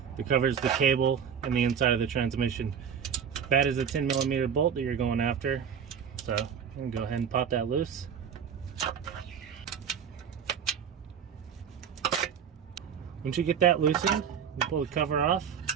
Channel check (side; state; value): left; quieter; 7.6 dB